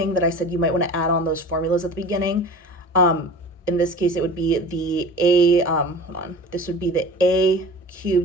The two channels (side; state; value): both; normal; correlation 0.37